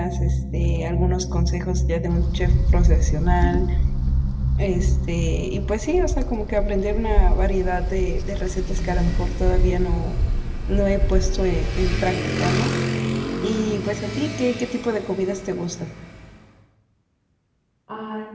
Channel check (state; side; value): identical; both; correlation 1.00